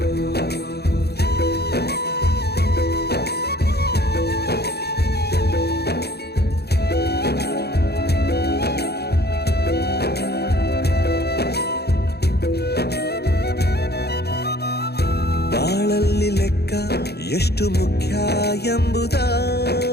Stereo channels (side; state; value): right; late; 0.47 ms